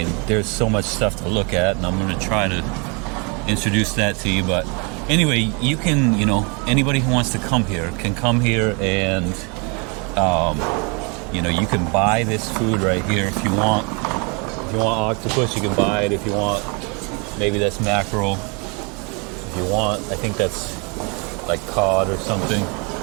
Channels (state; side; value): quieter; left; 32.4 dB